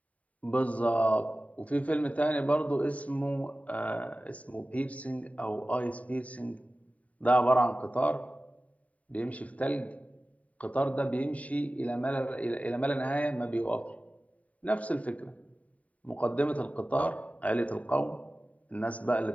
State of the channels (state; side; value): late; right; 0.068 ms